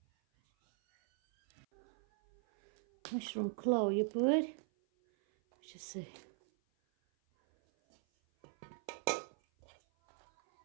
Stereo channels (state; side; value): silent; left; 52 dB below the other